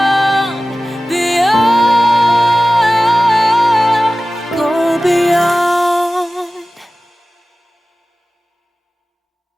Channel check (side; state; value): both; normal; correlation 0.96